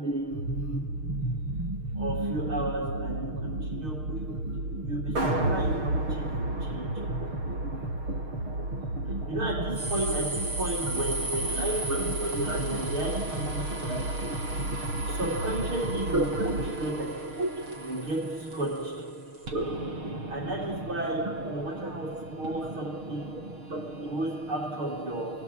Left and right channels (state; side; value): late; left; 6.5 ms